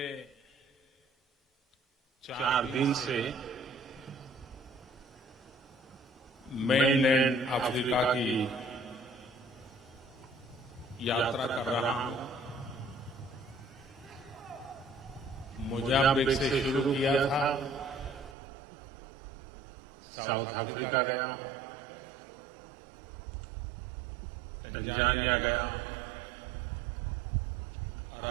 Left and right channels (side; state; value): left; drops out; at 18.4 s